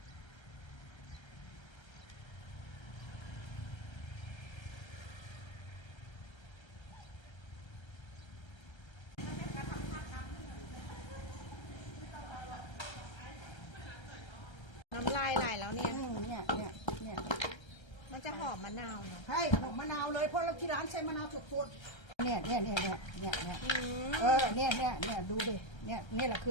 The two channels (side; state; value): right; late; 1.3 ms